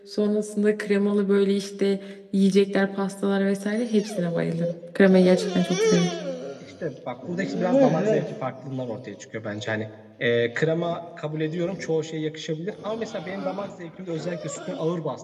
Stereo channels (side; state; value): both; identical; correlation 1.00